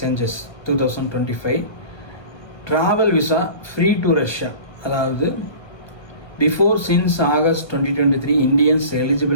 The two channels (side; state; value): right; late; 1.2 ms